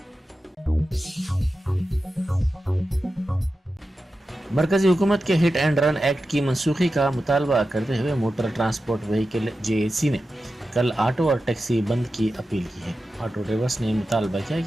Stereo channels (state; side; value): normal; both; correlation 0.92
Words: मरकजी हुकूमत के हिट एंड रन एक्ट की मनसूखी का मुतालबा करते हुए मोटर ट्रांसपोर्ट व्हीकल जेएसी ने कल ऑटो और टैक्सी बंद की अपील की है। ऑटो ड्राइवर्स ने मुतालबा किया